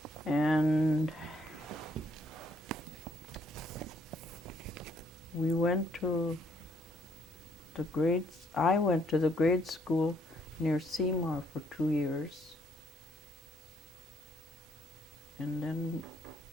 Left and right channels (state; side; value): normal; both; correlation 0.68